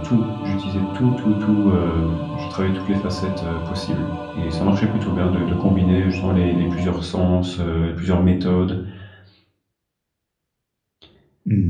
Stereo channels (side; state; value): both; identical; correlation 1.00